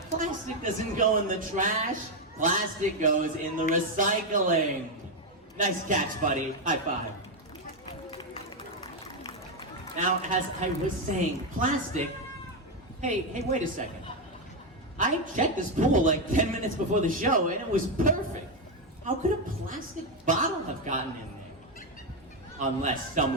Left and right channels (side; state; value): both; normal; correlation 0.05